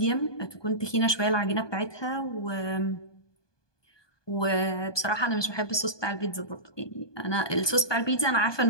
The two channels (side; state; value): right; late; 1.2 ms